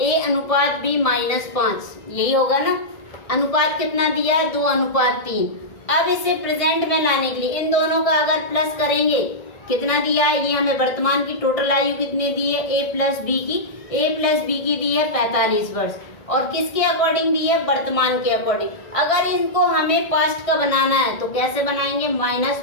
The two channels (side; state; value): right; late; 1.6 ms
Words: -5, यही होगा ना। अनुपात कितना दिया है, 2:3। अब इसे प्रेजेंट में लाने के लिए इन दोनों का अगर प्लस करेंगे, कितना दिया है, ये हमें वर्तमान की टोटल आयु कितनी दी है, A+B की दी है 45 वर्ष, और किसके अकॉर्डिंग दी है, वर्तमान के अकॉर्डिंग। अगर इनको हमें पास्ट का बनाना है तो कैसे बनाएंगे,